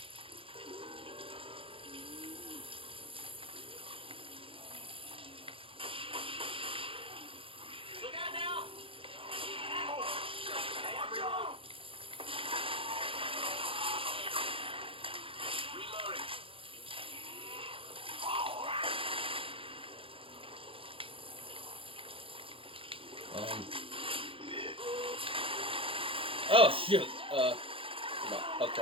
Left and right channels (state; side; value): late; left; 0.26 ms